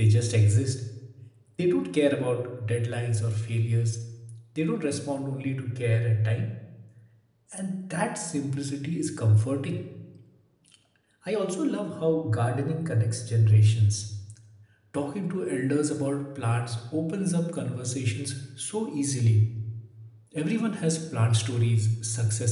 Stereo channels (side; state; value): both; identical; correlation 1.00